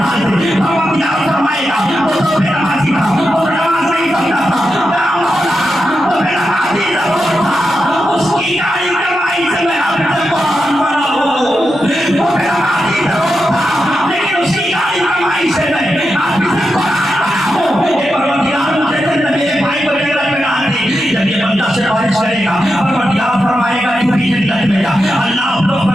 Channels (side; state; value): both; normal; correlation 0.88